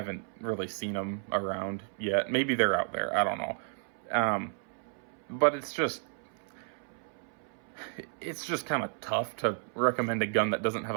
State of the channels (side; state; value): left; silent; 56 dB below the other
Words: really seen them around yet. Maybe they're out there. I don't know. But it's just kind of tough to recommend a gun that doesn't have